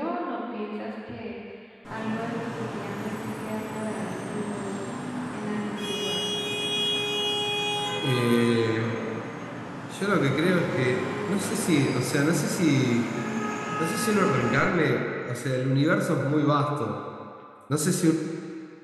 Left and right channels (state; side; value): identical; both; correlation 1.00